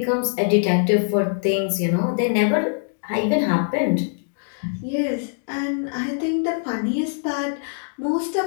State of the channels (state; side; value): silent; right; digital silence